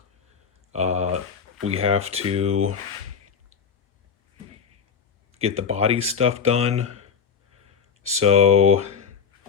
we have to get the body stuff done. So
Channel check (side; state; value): right; quieter; 6.7 dB